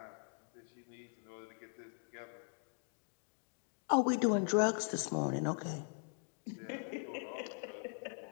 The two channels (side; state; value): right; silent; 51 dB below the other